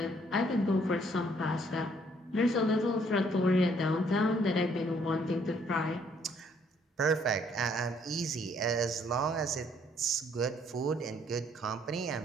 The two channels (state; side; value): normal; both; correlation 0.65